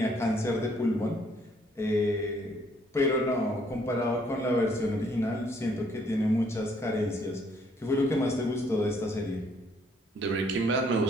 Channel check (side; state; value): both; normal; correlation 0.66